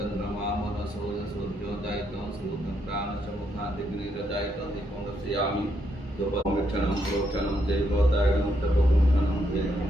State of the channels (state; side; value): normal; both; correlation 0.77